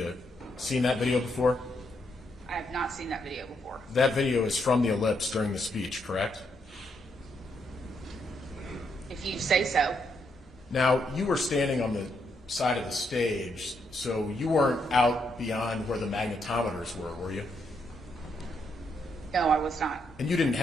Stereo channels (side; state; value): both; normal; correlation 0.77